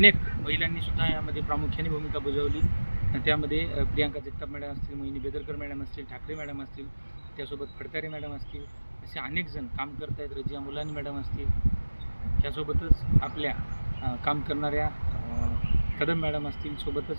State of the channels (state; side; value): inverted; both; correlation -1.00